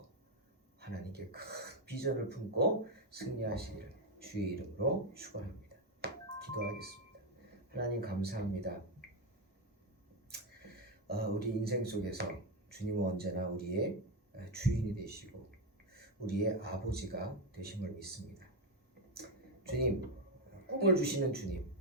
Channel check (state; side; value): normal; both; correlation 0.06